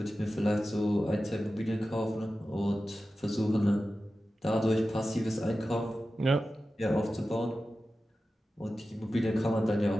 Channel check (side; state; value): both; normal; correlation 0.94